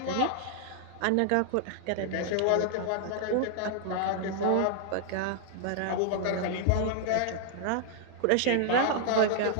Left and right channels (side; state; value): both; different; correlation 0.00